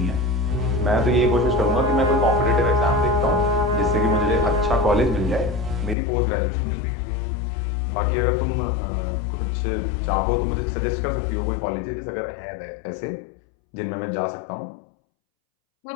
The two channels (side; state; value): right; drops out; at 6.0 s